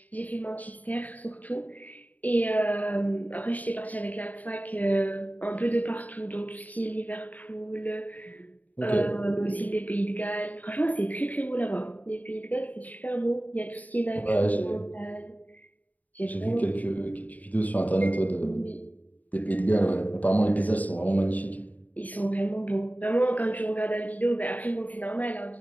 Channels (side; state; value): right; late; 0.076 ms